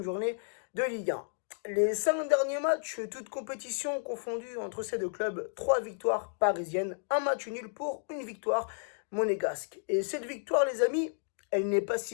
journée de Ligue 1. Les 5 derniers matchs, toutes compétitions confondues entre ces deux clubs, 3 victoires parisiennes, un match nul pour une victoire monégasque. Et cette victoire, les amis, elle n'est pas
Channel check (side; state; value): right; silent; digital silence